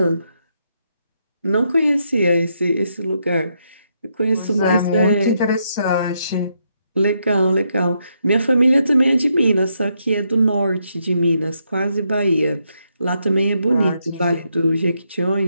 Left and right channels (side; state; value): both; inverted; correlation -0.78